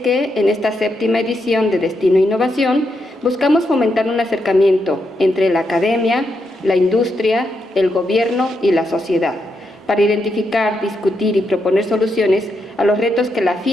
en esta 7ª edición de Destino Innovación, buscamos fomentar un acercamiento entre la academia, la industria, el gobierno y la sociedad, para identificar, discutir y proponer soluciones a los retos que la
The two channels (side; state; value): both; normal; correlation 0.82